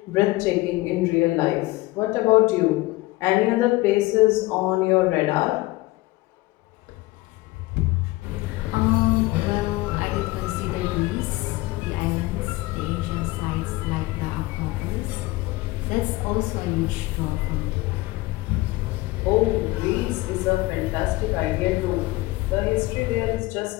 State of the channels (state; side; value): quieter; right; 20.2 dB